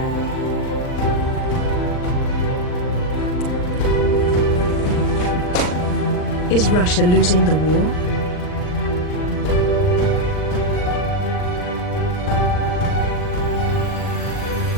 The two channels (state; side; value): late; right; 39 ms